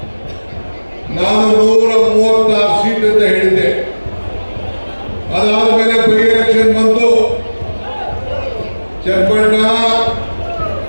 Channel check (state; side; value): inverted; both; correlation -1.00